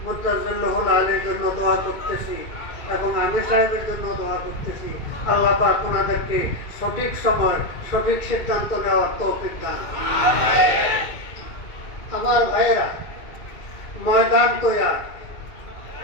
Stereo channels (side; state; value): right; late; 2.5 ms